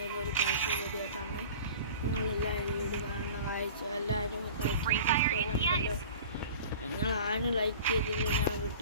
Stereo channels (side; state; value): both; inverted; correlation -0.41